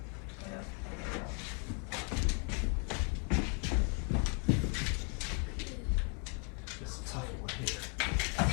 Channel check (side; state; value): right; quieter; 35.3 dB